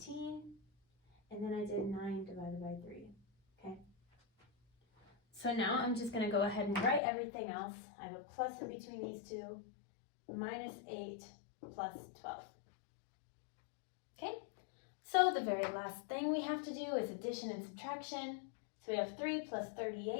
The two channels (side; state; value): right; drops out; at 7.0 s